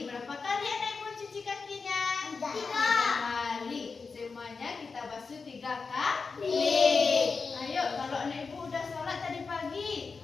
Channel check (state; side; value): quieter; right; 4.7 dB